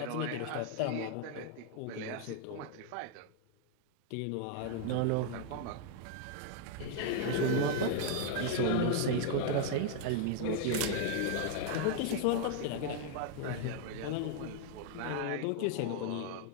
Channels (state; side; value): different; both; correlation 0.00